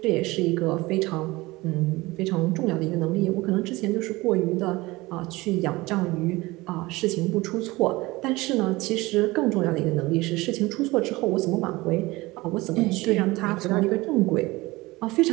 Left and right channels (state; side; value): quieter; left; 21.0 dB